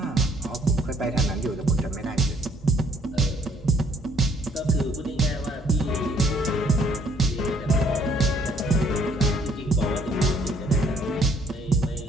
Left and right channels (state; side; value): normal; both; correlation 0.63